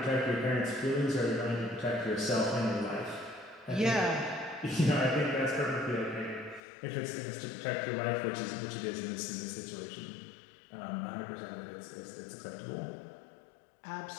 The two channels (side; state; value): right; drops out; at 6.6 s